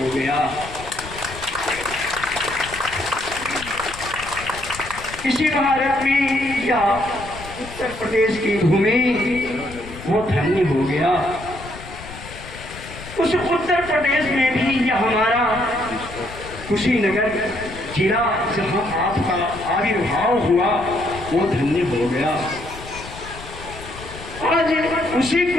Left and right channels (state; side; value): noise; left; rumble, 14 dB below the sound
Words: गया। इसी भारत में या उत्तर प्रदेश की भूमि वो धन्य हो गया। उस उत्तर प्रदेश में भी यह हमारा कुशीनगर जिला जहां आपका आविर्भाव हुआ वो धन्य हो गया। आज उसी